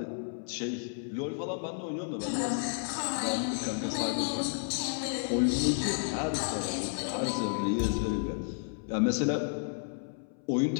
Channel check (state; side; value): silent; right; 57 dB below the other